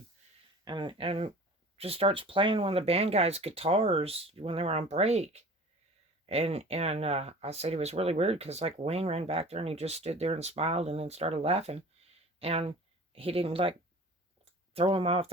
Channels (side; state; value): both; normal; correlation 0.42